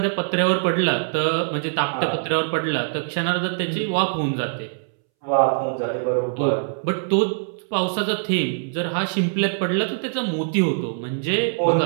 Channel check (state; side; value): silent; left; 64 dB below the other